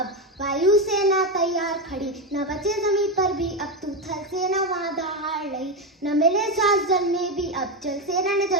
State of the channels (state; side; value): normal; both; correlation 0.12